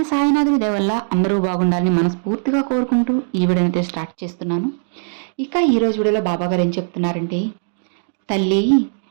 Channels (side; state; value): left; silent; digital silence